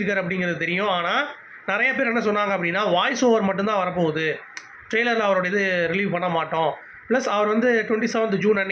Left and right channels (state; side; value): identical; both; correlation 1.00